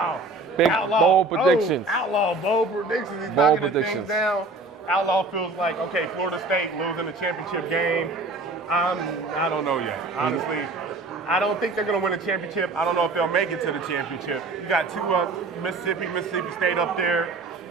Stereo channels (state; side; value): quieter; left; 3.3 dB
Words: Watch. Big, bold predictions. Outlaw, bold predictions. He's Bold knocking the things predictions. down. Outlaw feels like, okay, Florida State losing the championship game. I don't know yet. Honestly, I don't think they're going to win a championship. I don't know if they'll make it to the championship. You got 2 Mississippi State up there.